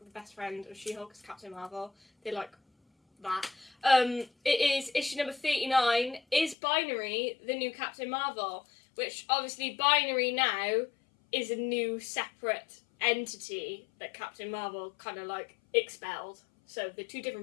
best friend of She-Hulk is Captain Marvel. They like that. It is issue number 39. Is Binary the new Captain Marvel? Which obviously Binary now is a new separate entity that Captain Marvel kind of like expelled. So they're 2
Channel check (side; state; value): right; drops out; at 6.6 s